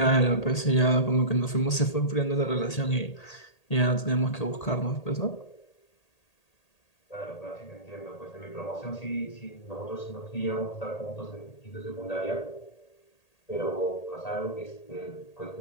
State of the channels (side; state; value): right; late; 1.8 ms